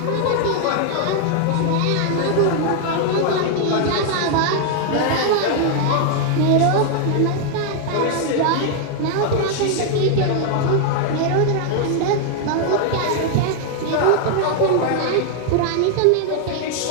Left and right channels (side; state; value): both; different; correlation 0.00